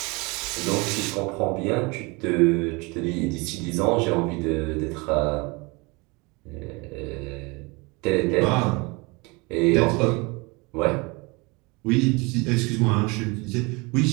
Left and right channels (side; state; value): left; quieter; 27.0 dB